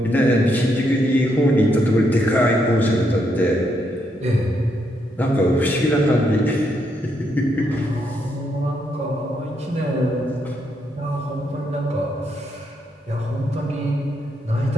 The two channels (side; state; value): both; normal; correlation 0.77